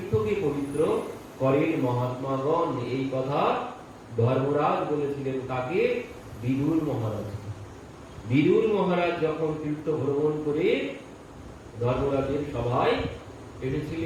পবিত্র করেন মহাত্মাগণ। এই কথা ধর্মরাজ বলেছিলেন কাকে? বিদুর মহারাজ। বিদুর মহারাজ যখন তীর্থ ভ্রমণ করে ধর্মরাজের সভায়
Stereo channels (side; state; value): both; identical; correlation 1.00